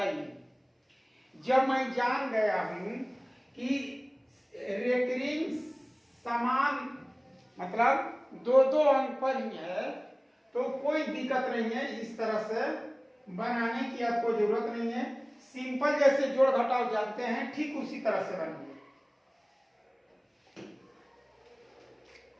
जब मैं जान गया हूं कि रेकरिंग समान मतलब दो दो अंक पर ही है, तो कोई दिक्कत नहीं है, इस तरह से बनाने की आपको जरूरत नहीं है। सिंपल जैसे जोड़ घटाव जानते हैं ठीक उसी तरह से बनाइए।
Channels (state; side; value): identical; both; correlation 1.00